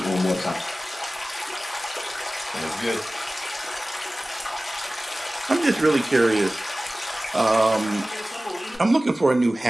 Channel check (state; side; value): normal; both; correlation 0.97